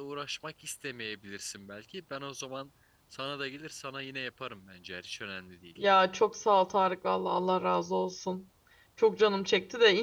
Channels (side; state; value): both; identical; correlation 1.00